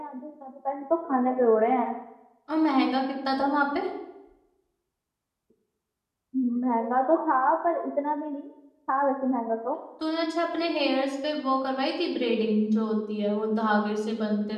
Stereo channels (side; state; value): both; identical; correlation 1.00